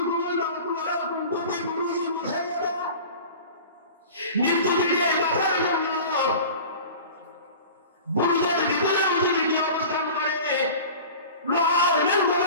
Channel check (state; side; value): inverted; both; correlation -0.38